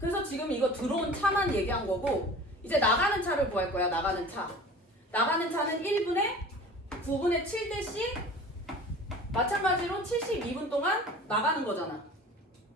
지금 이거 들어온 차만 얘기한 거고, 이제 나가는 차를 구할 거야, 나가는 차. 나가는 차는 1분에 9분의 7대씩 마찬가지로 72분 동안 나가는 거잖아.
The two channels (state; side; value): normal; both; correlation 0.41